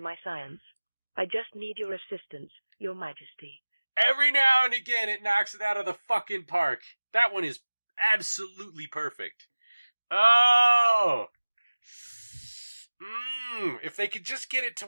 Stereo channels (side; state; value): both; inverted; correlation -1.00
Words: science. I just need your assistance, Your Majesty. Every now and again it knocks it out of the fucking park. That one is absolutely perfect. Oh! If they could just get it to